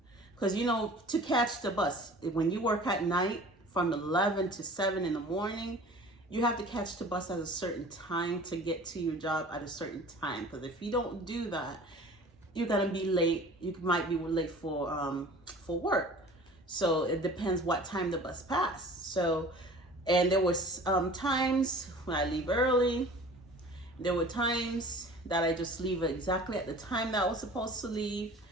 Because, you know, to catch the bus, when you work at night from 11 to 7 in the morning, you have to catch the bus at a certain time to get to your job at a certain time. Because if you don't do that, you're gonna be late. You might be late for work. So it depends what time the bus passed. So, and there was times when I leave early. There were times that I just leave exactly at the time that I was supposed to leave.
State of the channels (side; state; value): both; normal; correlation 0.44